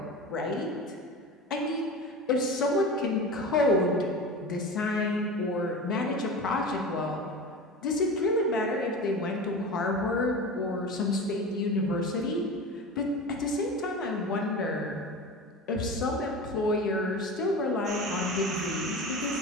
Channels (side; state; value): both; normal; correlation 0.30